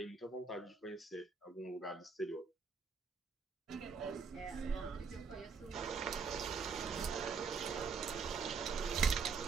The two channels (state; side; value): quieter; left; 5.3 dB